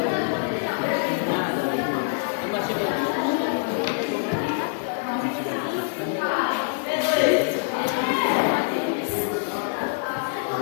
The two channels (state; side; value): silent; right; 56 dB below the other